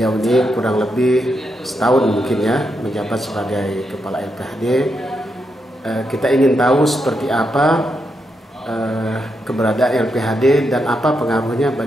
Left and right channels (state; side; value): normal; both; correlation 0.83